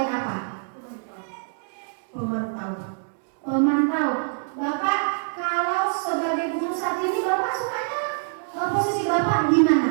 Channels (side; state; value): left; silent; 62 dB below the other